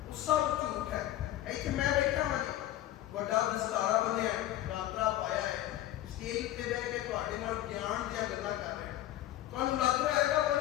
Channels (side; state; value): right; quieter; 13.9 dB